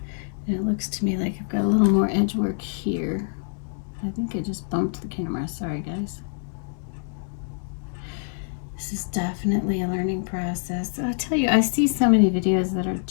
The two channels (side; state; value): right; silent; digital silence